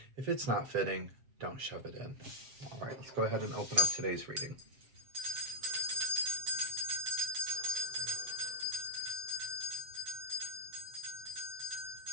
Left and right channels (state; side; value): late; left; 7.6 ms